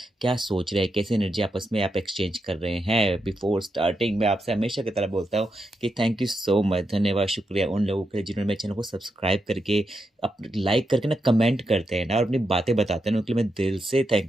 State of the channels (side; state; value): both; normal; correlation 0.85